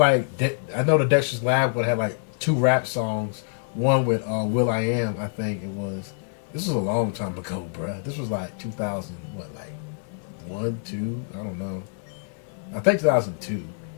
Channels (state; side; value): silent; right; 61 dB below the other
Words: the Dexter's Lab would have like 2 rap songs. One with Will I Am, I think it was. This was a long time ago, bruh. This was like 2000, what, like 1, 2? I don't know. I think 2002.